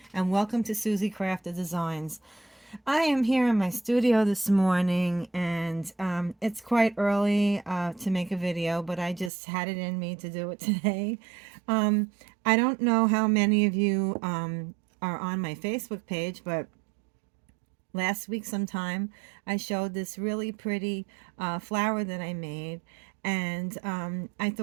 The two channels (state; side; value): drops out; left; at 9.3 s